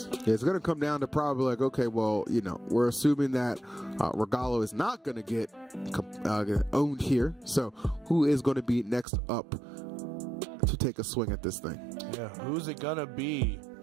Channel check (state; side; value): drops out; left; at 9.1 s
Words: Yeah, it's going to come down to probably like, okay, well, we're assuming that Regalo is not going to get owned here. So, who is going to be next up to take a swing at this thing? Yeah, who's it going to be?